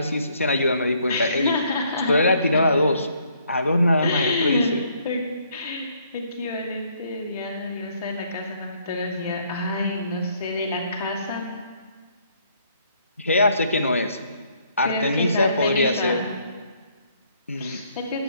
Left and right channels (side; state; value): both; inverted; correlation -0.67